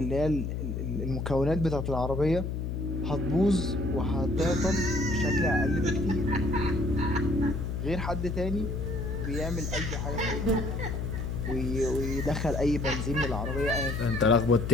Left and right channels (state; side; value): noise; left; hum, 3 dB below the sound